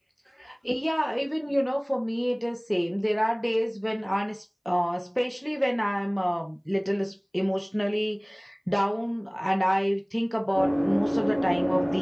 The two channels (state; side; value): identical; both; correlation 1.00